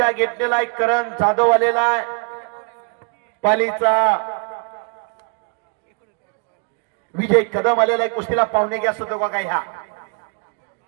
घेतलेला आहे. करण जाधव आलेला आहे पालीचा. विजय कदम आलेला आहे. कुस्तीला पाहुणे घ्या असतो का काय? ह्या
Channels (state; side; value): quieter; left; 35.0 dB